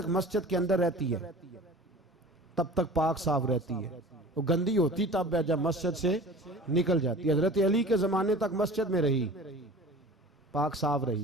मस्जिद के अंदर रहती है तब तक पाक साफ रहती है, वो गंदी होती तब है जब मस्जिद से निकल जाती है। हजरत अली के जमाने तक मस्जिद में रही, पाक साफ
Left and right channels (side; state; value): both; normal; correlation 0.41